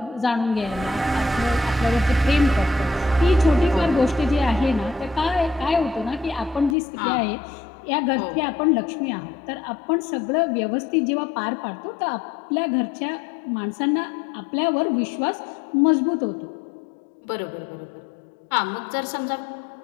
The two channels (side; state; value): right; drops out; at 6.8 s